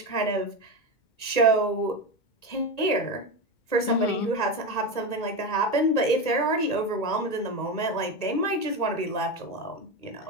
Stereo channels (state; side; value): late; right; 1.8 ms